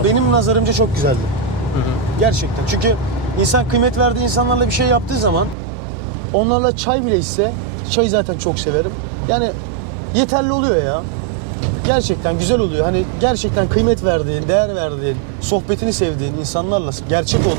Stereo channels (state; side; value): drops out; left; at 5.6 s